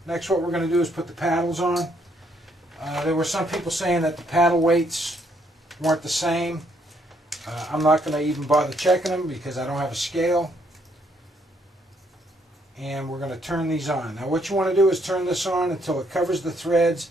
Next, what we're going to do is put the paddles on. There were some people saying that the paddle weights weren't the same. I'm not going to even bother checking them because I don't have a scale. And we're going to turn these on. Now what you want to do is turn this on until it covers the threads,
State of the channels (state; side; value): normal; both; correlation 0.71